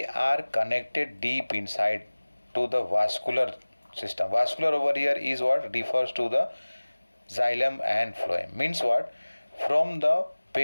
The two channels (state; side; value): inverted; both; correlation -1.00